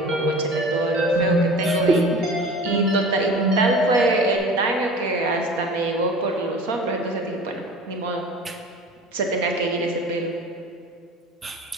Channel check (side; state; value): both; normal; correlation 0.40